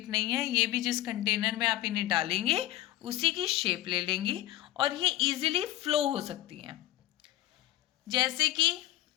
नहीं है, ये भी जिस कंटेनर में आप इन्हें डालेंगे उसी की शेप ले लेंगी और ये इजीली फ्लो हो सकती हैं। जैसे कि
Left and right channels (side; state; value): right; quieter; 14.8 dB